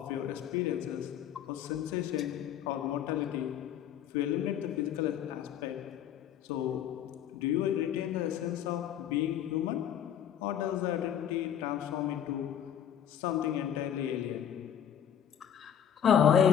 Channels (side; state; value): right; quieter; 9.6 dB